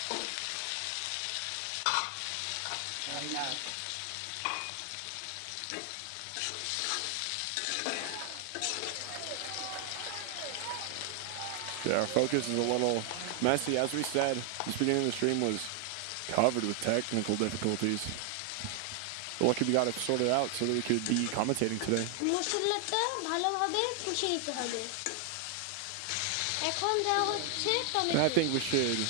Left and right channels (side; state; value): both; different; correlation 0.00